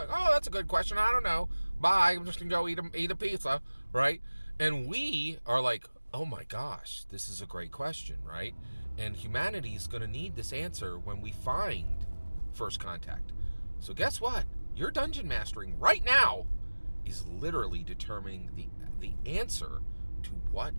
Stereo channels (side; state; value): both; inverted; correlation -1.00